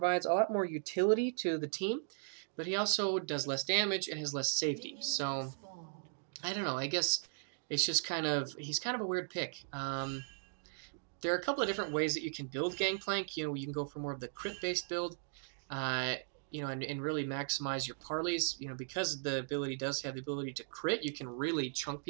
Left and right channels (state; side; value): silent; left; digital silence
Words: a lot more utility to the team, but he also does less damage and has less safety. So, I don't know, I guess it's just he's kind of a weird pick. There are a couple of different ways that you can build Gangplank. You know, you can go for more of the crit-based build, you know, and really maximize your parleys. You know, because the ability does have the ability to crit, you can really chunk